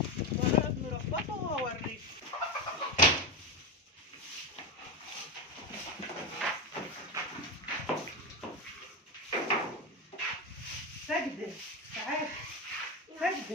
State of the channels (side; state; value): both; normal; correlation 0.16